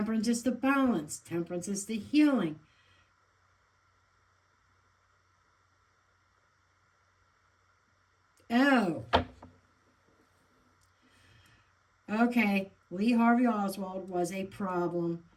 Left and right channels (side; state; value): both; identical; correlation 1.00